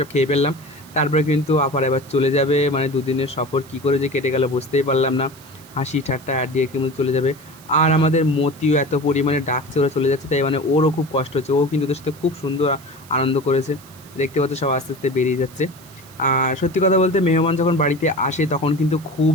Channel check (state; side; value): noise; right; hiss, 23 dB below the sound